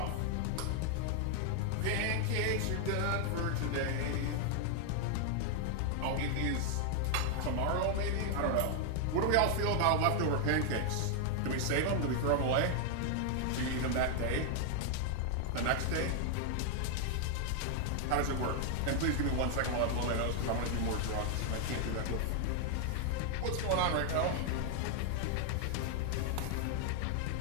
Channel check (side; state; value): both; different; correlation 0.00